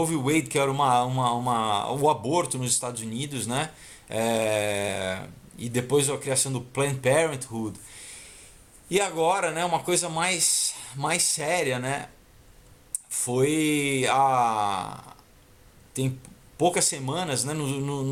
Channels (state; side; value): identical; both; correlation 1.00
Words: v. Wade, que era o aborto nos Estados Unidos, né? E depois a criação do Planned Parenthood. E agora, né, uma coisa mais séria, né, tem poucas semanas, né,